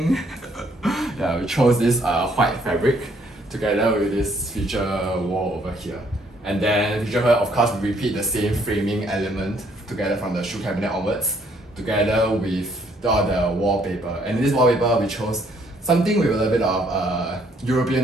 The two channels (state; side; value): normal; both; correlation 0.67